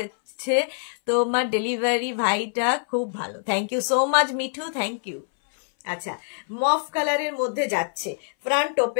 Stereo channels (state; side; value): silent; right; 60 dB below the other